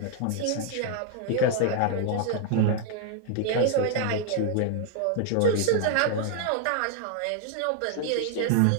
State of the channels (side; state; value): both; different; correlation 0.00